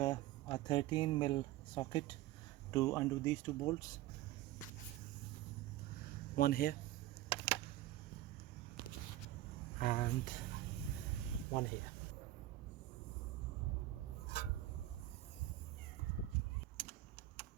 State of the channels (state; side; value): quieter; left; 14.6 dB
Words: 13mm socket to undo these two bolts. One here and one here.